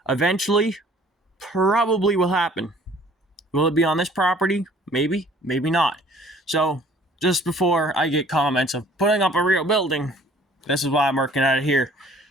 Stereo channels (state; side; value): normal; both; correlation 0.54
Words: Eventually, probably will happen. Will it be on this property? Maybe, maybe not. So, just before I get comments of putting up a real building, this is why I'm working at it here.